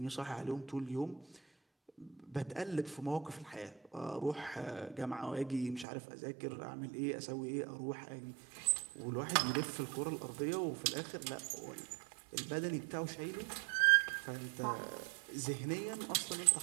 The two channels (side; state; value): left; drops out; at 5.9 s